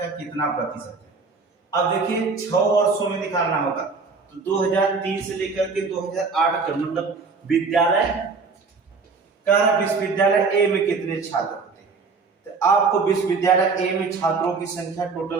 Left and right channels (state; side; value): quieter; left; 4.5 dB